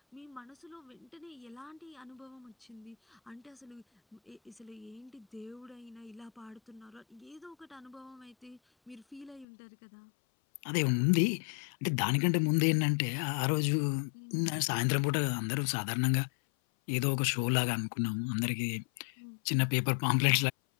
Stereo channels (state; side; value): drops out; right; at 9.5 s